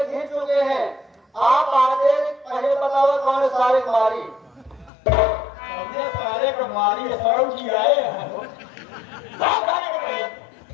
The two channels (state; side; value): drops out; right; at 4.9 s